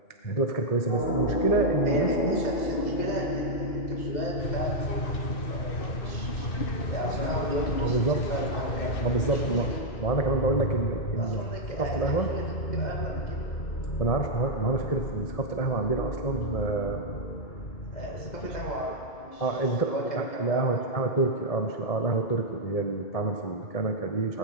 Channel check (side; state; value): right; late; 1.7 ms